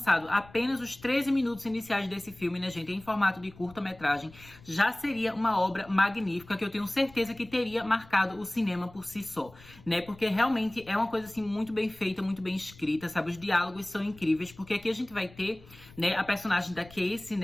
apenas os 13 minutos iniciais desse filme, né, gente, em formato de curta-metragem, já seria uma obra magnífica que eu tenho certeza que teria marcado o cinema por si só, né, porque realmente é uma coisa, assim, muito bem feita, muito bem escrita, sabe, os diálogos são incríveis, porque aqui a gente vai ter, né, a personagem da Casey,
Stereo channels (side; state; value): left; noise; rumble, 22 dB below the sound